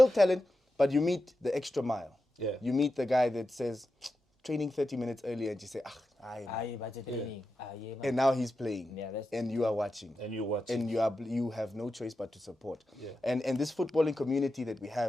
talent, but you meet the extra mile. You meet the guy that says, training 30 minutes earlier, and you say, and now he's playing, and you are watching. And you have no choice but to support. And this footballing community that we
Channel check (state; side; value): normal; both; correlation 0.90